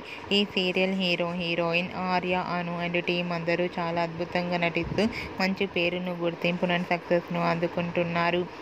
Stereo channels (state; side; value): identical; both; correlation 1.00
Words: ఈ serial heroine Arya, Anu and team అందరూ చాలా అద్భుతంగా నటిస్తూ మంచి పేరును, గుర్తింపును, సక్సెస్ను అందుకుంటున్నారు.